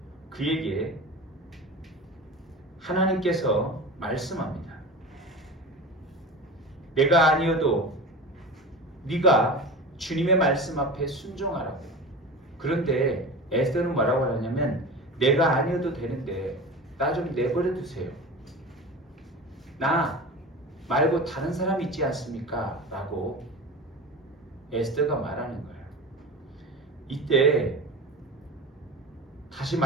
그에게 하나님께서 말씀합니다. 내가 아니어도 네가 주님의 말씀 앞에 순종하라고. 그런데 에스더는 뭐라고 하냐면 내가 아니어도 되는데 나 좀 내버려 두세요. 나 말고 다른 사람 있지 않습니까? 라고 에스더가 말하는 거예요. 이때 다시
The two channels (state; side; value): normal; both; correlation 0.31